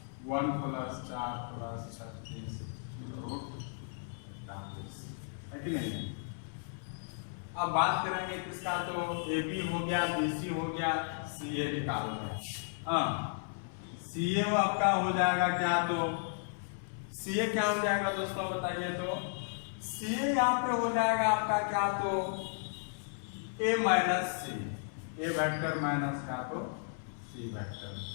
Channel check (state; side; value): silent; right; 55 dB below the other